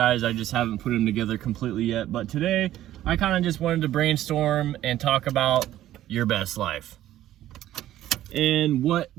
I just haven't put them together completely yet. But today, I kind of just wanted to brainstorm and talk about your best life. And what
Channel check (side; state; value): left; quieter; 13.3 dB